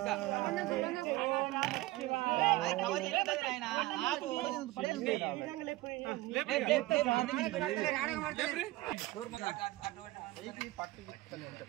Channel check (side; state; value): left; quieter; 18.5 dB